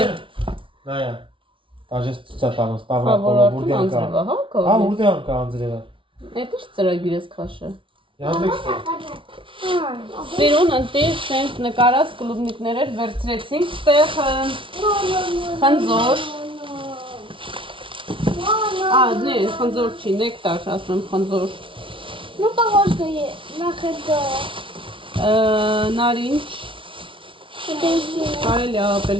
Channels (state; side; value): late; left; 0.25 ms